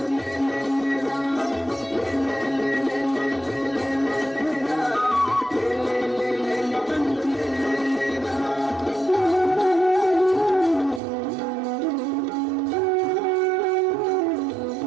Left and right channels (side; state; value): left; drops out; at 11.0 s